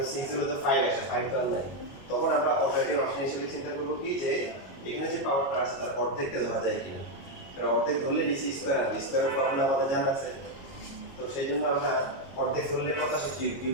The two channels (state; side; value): late; right; 22 ms